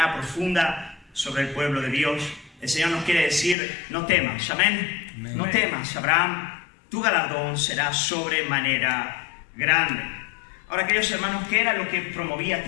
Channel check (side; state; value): right; drops out; at 3.6 s